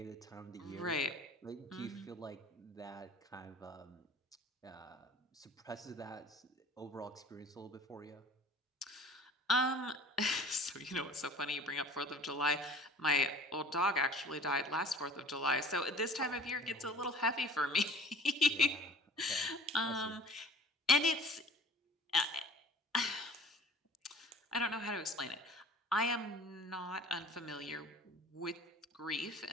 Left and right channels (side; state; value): both; normal; correlation 0.46